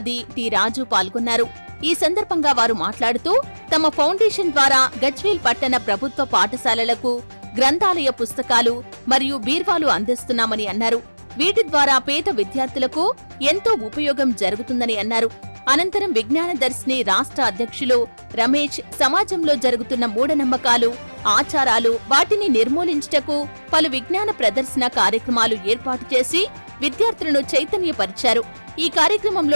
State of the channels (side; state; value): both; inverted; correlation -1.00